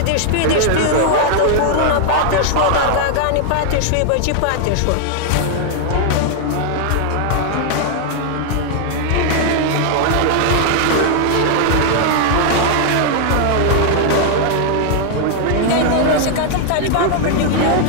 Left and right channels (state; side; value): different; both; correlation 0.00